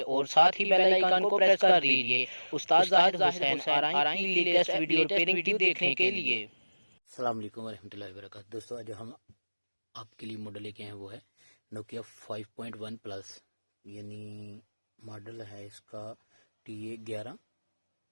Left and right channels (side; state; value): both; inverted; correlation -1.00